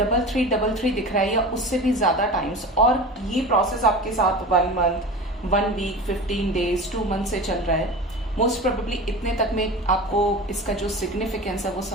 दिख रहा है या उससे भी ज़्यादा टाइम्स, और ये प्रोसेस आपके साथ 1 मंथ, 1 वीक, 15 डेज, 2 मंथ से चल रहा है, मोस्ट प्रोबेबली इतने तक में आपको इसका जो सिग्निफिकेंस है वो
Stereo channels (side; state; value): both; normal; correlation 0.32